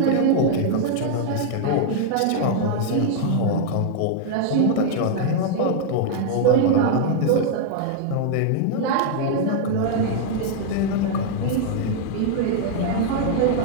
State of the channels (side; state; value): both; different; correlation -0.01